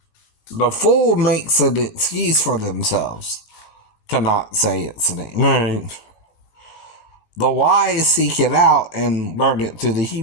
The fool makes an excuse for themselves to not say its name. Right. The wise seek it out and learn it through the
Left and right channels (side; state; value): right; late; 17 ms